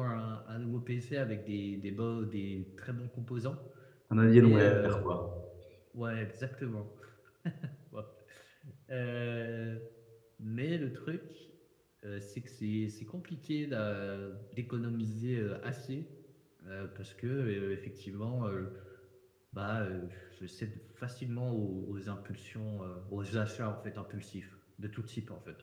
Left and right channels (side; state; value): both; identical; correlation 1.00